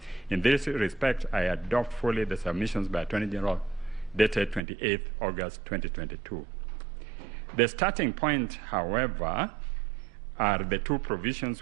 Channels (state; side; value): drops out; left; at 4.6 s